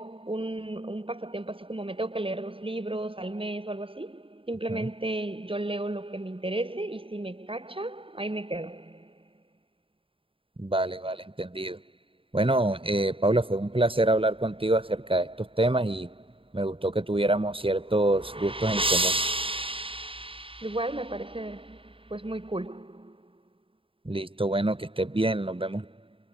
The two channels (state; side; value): late; left; 0.26 ms